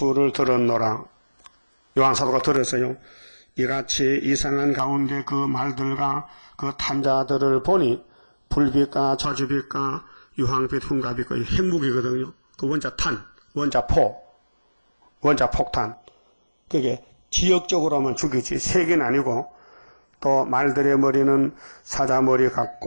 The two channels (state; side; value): inverted; both; correlation -1.00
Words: 들었노라. 요한사도가 들었어요. 이같이 이상한 가운데 그 말들과 그 탄자들을 보니 불빛과 저주빛과 유황빛 흉가빛과 핵무기거든요. 그 원자 탄, 원자 포, 원자 폭탄. 그게 지역적으로만 죽이지 세계는 아니고 또 말들의 머리는 사자머리